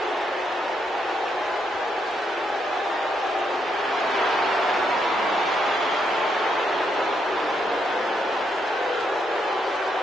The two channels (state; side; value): normal; both; correlation 0.77